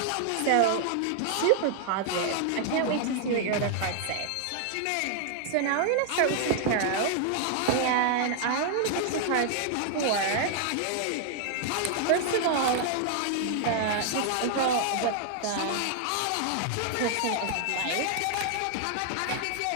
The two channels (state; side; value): different; both; correlation 0.00